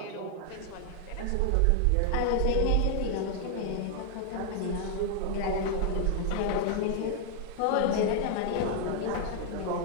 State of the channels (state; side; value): different; both; correlation 0.00